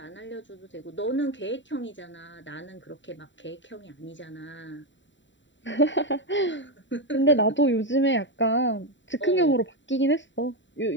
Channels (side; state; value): right; late; 0.54 ms